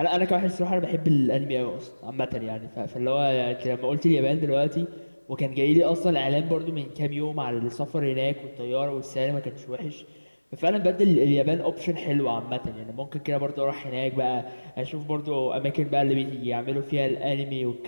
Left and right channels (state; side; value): inverted; both; correlation -1.00